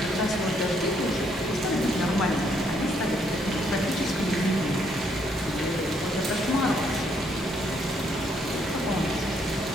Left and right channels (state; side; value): normal; both; correlation 0.71